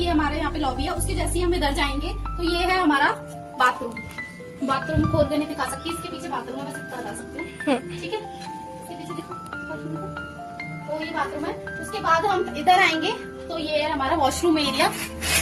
हमारे यहाँ पे लॉबी है। उसके जैसे ही हम इधर जाएंगे तो ये है हमारा बाथरूम। बाथरूम खोल के नहीं दिखा सकती, इसके पीछे बाथरूम है, बस इतना बता सकती हूँ। ठीक है, इसके पीछे देखो, तो ये बाथरूम है। उसके बाद हम इधर आएंगे तो ये है हमारा वॉशरूम एरिया,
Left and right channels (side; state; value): both; identical; correlation 1.00